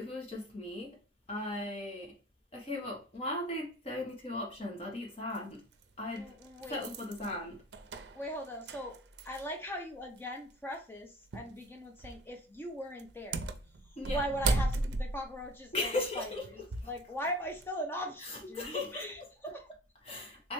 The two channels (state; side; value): normal; both; correlation 0.44